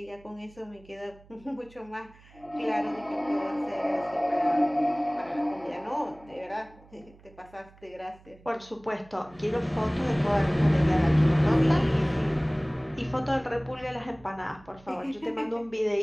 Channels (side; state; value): right; noise; hum, 25 dB below the sound